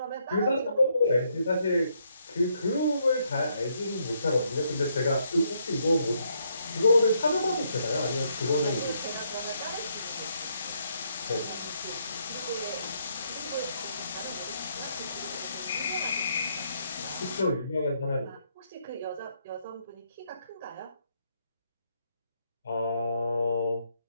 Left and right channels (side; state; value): both; inverted; correlation -0.74